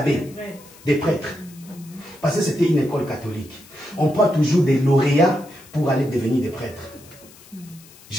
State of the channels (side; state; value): left; noise; hiss, 23 dB below the sound